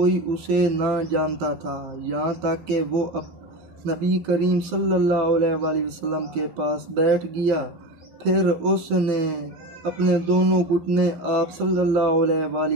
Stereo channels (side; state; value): left; late; 12 ms